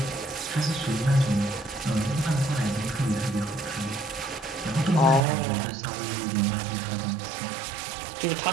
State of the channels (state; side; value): drops out; left; at 5.2 s